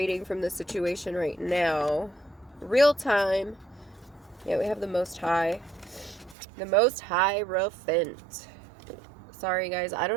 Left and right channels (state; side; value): drops out; left; at 6.4 s